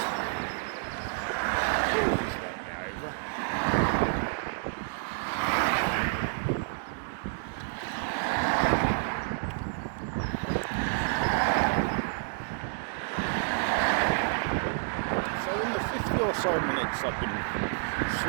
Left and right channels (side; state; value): left; silent; digital silence